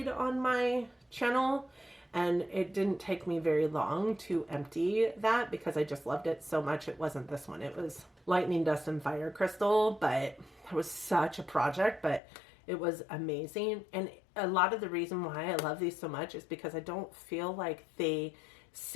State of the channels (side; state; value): right; drops out; at 12.2 s